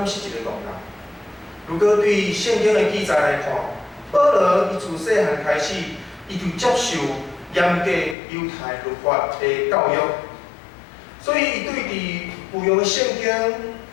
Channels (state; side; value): drops out; right; at 8.2 s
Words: 是一个戆人。如果对圣经的记载来看，保罗伊自细汉开始，伊就接受严格犹太律法的教育，所以伊对伫旧约的圣经